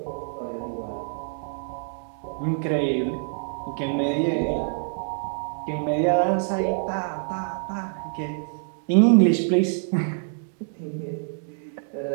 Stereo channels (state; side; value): silent; left; 61 dB below the other